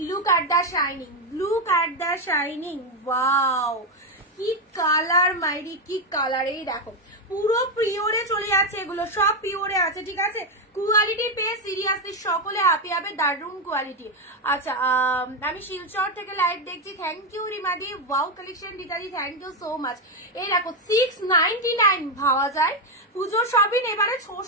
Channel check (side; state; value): both; normal; correlation 0.06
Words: look at the shining, look at the shining, wow কি কালার মাইরি, কি কালার। এই দেখো পুরো পিওরে চলে যাচ্ছে, এগুলো সব পিওরে আছে, ঠিক আছে? কোয়ালিটি পেয়ে সিরিয়াসলি সকলে হাপি হবে, দারুন কোয়ালিটি। আচ্ছা আমি শিলচর থেকে লাইভ দেখছি, থ্যাংক ইউ রিমাদি। ওয়াও কালেকশন দিদাদি, থ্যাংক ইউ সো মাচ। এই দেখো 699 ভাবা যায়। পুজোর শপিং এবারে